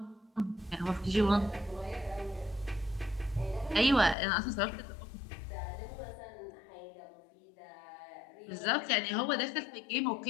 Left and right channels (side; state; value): right; drops out; at 4.2 s